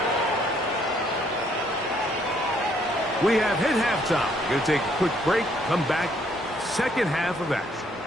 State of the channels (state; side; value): normal; both; correlation 0.67